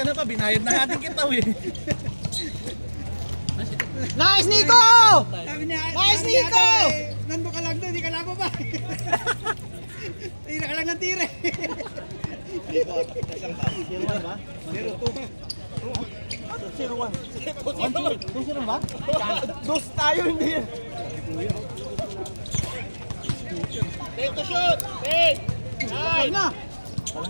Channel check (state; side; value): inverted; both; correlation -1.00